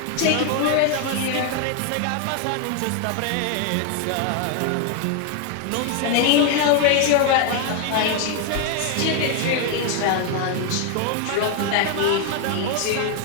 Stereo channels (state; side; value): different; both; correlation 0.01